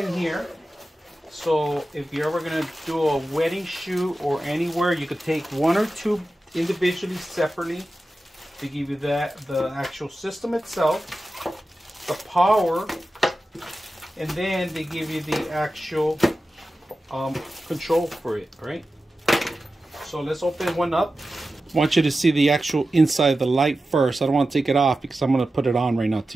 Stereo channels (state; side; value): normal; both; correlation 0.93